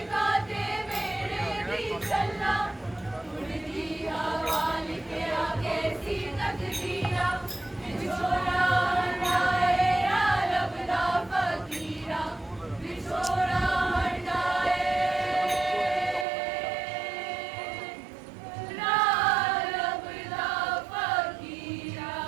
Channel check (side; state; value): left; drops out; at 16.2 s